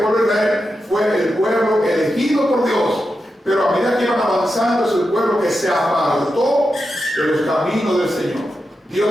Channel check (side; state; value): both; normal; correlation 0.88